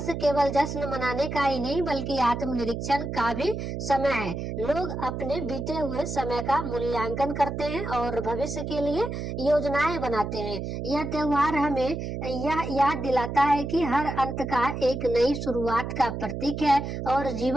केवल जश्न मनाने का ही नहीं बल्कि आत्मनिरीक्षण का भी समय है। लोग अपने बीते हुए समय का मूल्यांकन करते हैं और भविष्य के लिए योजनाएं बनाते हैं। यह त्योहार हमें यह याद दिलाता है कि हर अंत का एक नई शुरुआत का प्रतीक है और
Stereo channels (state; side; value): noise; right; hum, 5 dB below the sound